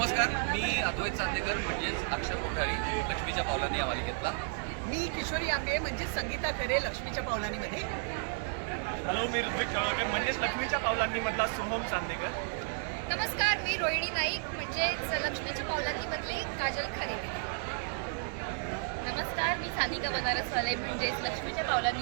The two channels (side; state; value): left; silent; 56 dB below the other